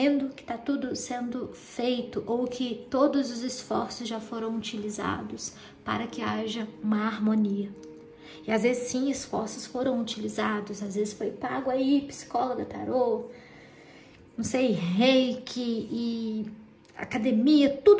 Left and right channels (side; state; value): both; identical; correlation 1.00